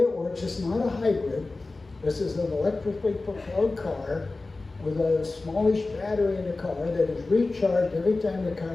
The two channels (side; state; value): right; quieter; 3.4 dB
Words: works, it's not a hybrid. This is an electrically propelled car with a smallish battery in the car that is recharged every time the